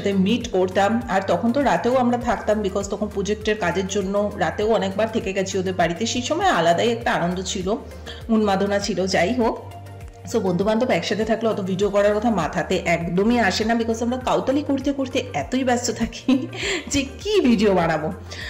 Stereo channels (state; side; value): identical; both; correlation 1.00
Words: মিট করতাম। আর তখন তো রাতেও আমরা থাকতাম, বিকজ তখন প্রজেক্টের কাজের জন্য রাতেও অনেকবার থেকে গেছি ওদের বাড়িতে। সেই সময় আলাদাই একটা আনন্দ ছিল, উন্মাদনা ছিল। যাই হোক, সো বন্ধু বান্ধব একসাথে থাকলে অত ভিডিও করার কথা মাথাতে একদমই আসে না, বিকজ আমরা কাউতালি করতে করতে এতই ব্যস্ত থাকি যে কি ভিডিও বানাবো।